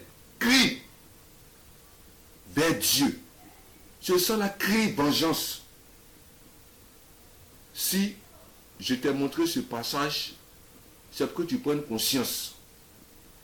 crie vers Dieu. Ce sang-là crie vengeance. Si je t'ai montré ce passage, c'est pour que tu prennes conscience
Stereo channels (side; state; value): both; identical; correlation 1.00